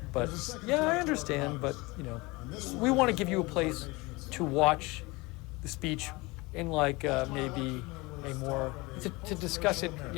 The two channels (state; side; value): quieter; right; 23.8 dB